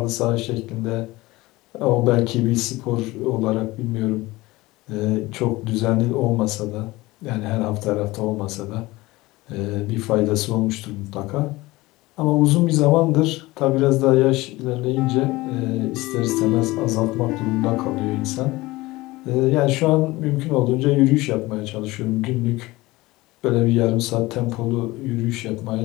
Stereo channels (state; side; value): quieter; right; 20.1 dB